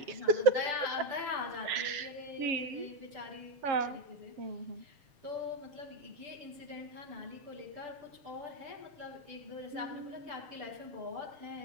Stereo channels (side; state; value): left; late; 7.4 ms